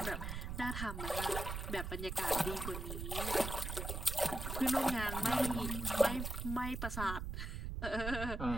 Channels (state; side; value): noise; right; rumble, 4 dB below the sound